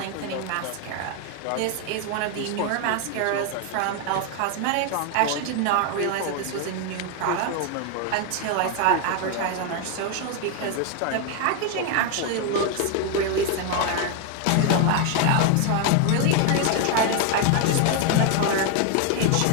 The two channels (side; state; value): both; different; correlation 0.01